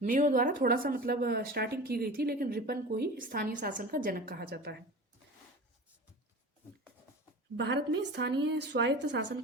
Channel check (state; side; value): normal; both; correlation 0.34